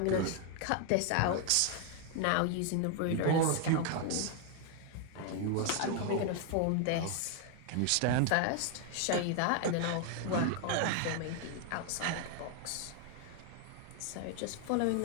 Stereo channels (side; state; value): both; different; correlation 0.00